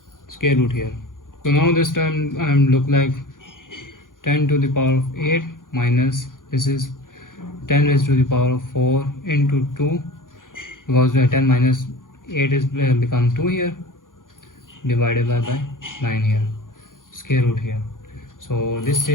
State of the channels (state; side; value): late; right; 0.89 ms